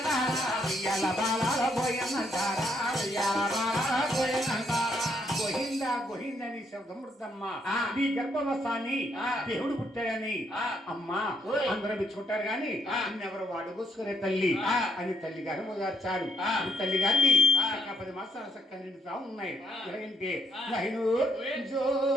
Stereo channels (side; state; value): both; normal; correlation 0.73